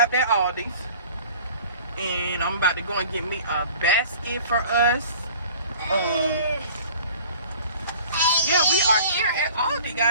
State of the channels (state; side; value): inverted; both; correlation -0.47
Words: at Aldi's, and I'm about to go and get me a basket for us. Yeah, we are here at Aldi,